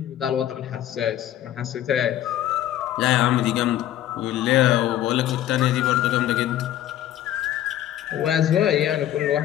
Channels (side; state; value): right; quieter; 12.3 dB